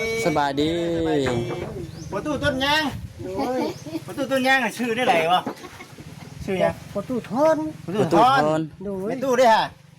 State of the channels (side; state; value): both; identical; correlation 1.00